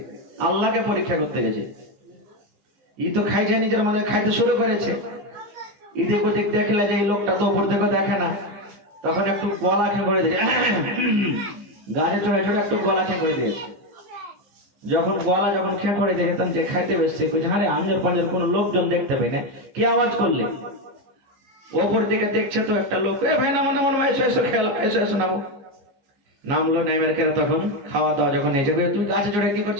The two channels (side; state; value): left; late; 15 ms